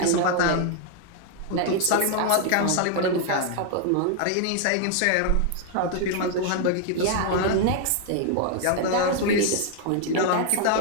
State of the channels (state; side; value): different; both; correlation 0.00